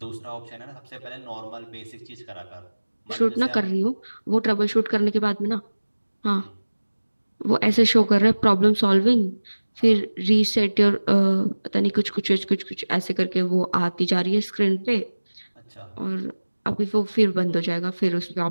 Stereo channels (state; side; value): inverted; both; correlation -1.00